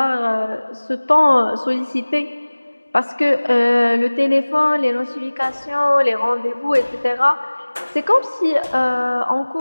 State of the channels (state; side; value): inverted; both; correlation -1.00